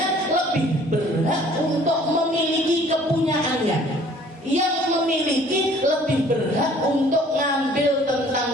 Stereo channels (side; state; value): both; normal; correlation 0.54